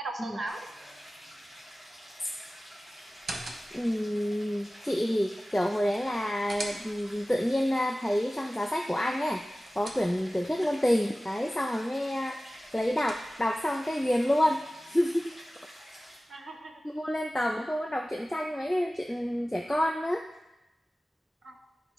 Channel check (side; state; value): both; normal; correlation 0.97